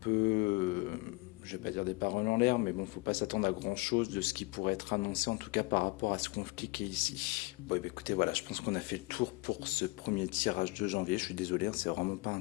je vais pas dire des paroles en l'air, mais bon, faut pas s'attendre à grand chose de ce qui pourrait être annoncé, en tout cas par rapport à ce conflit qui est ici. Bon, bah, écoutez, voilà, je pense qu'on a fait le tour pour ce premier tirage de janvier. Je suis désolé, hein, c'est vraiment pas un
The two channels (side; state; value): right; quieter; 25.0 dB